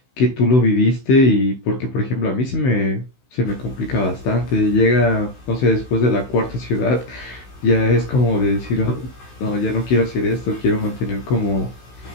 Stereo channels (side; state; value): right; late; 16 ms